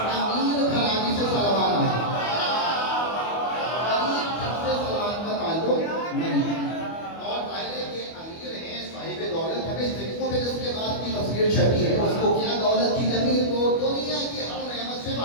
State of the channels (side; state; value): right; late; 25 ms